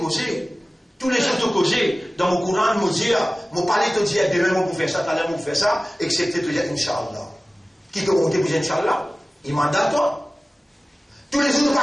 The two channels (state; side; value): normal; both; correlation 0.97